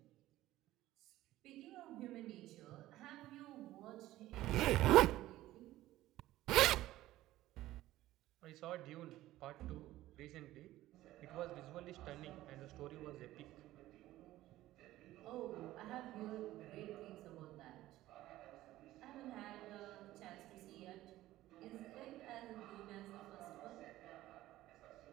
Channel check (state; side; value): quieter; left; 15.5 dB